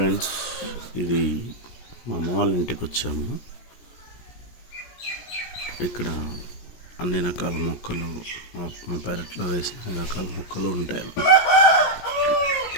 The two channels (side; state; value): right; late; 17 ms